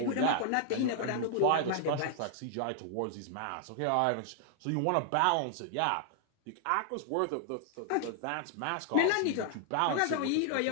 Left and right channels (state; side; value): different; both; correlation 0.00